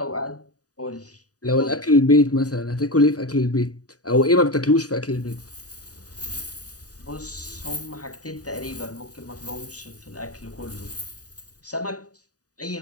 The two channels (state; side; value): late; right; 0.68 ms